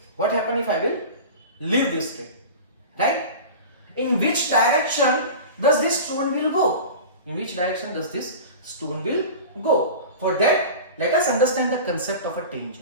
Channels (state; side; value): inverted; both; correlation -0.33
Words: What happens if I will leave this string? Right? In which direction does this stone will go? In which direction does this stone will go? For that, let us understand the concept of a